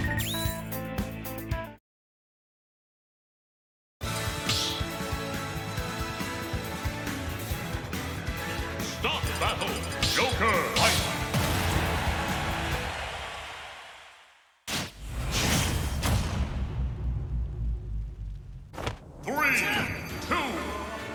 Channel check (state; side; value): identical; both; correlation 1.00